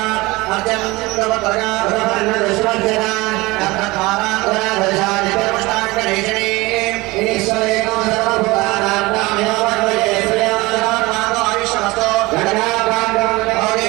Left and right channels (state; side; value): quieter; left; 21.9 dB